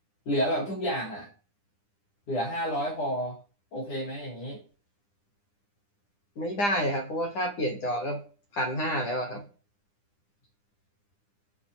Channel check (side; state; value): right; late; 9.9 ms